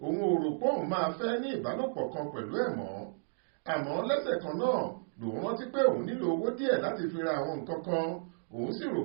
òun ò rò pé òun máa fẹ́ ní ìbálòpọ̀ kan pẹ̀lú ẹ̀ mọ́. Àmọ́ lẹ́sẹ̀ kan náà lòun rántí pé òun nílò owó díẹ̀ láti fi ra àwọn nǹkan kan. Òun sì rò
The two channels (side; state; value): left; silent; digital silence